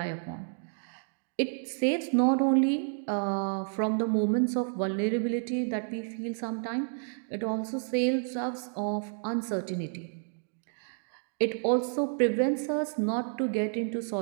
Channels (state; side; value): silent; left; digital silence